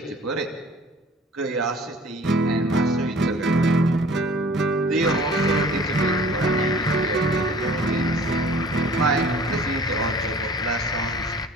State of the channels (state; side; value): normal; both; correlation 0.49